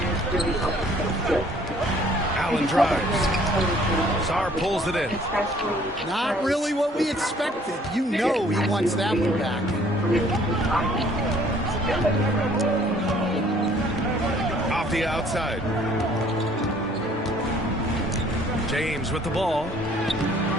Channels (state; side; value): normal; both; correlation 0.58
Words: Allen drives. Sarr pulls it in. Not really what we expected. You know he wants that one back. Off the outside. James with the ball.